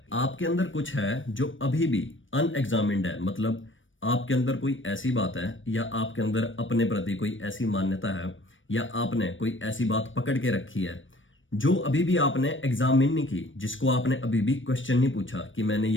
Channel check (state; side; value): late; right; 0.56 ms